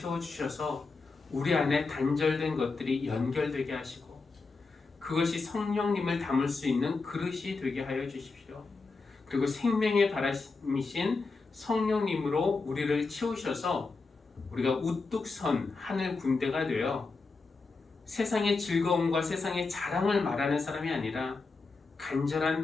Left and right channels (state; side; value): quieter; right; 4.1 dB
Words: 우리 안에 단절된 것들이 연결되게 하시고 그것이 성령님을 담을 수 있는 그릇이 되게 하여 주십시오. 그리고 생명의 바람이신 성령님으로 우리를 채우셔서 우리가 우뚝 선 하늘 군대가 되어 세상의 즐거움과 세상의 자랑을 말하는 사람이 아니라